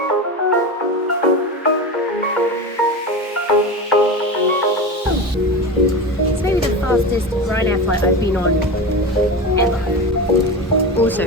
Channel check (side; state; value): both; normal; correlation 0.24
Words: It's maybe the fastest Ryanair flight I've been on ever.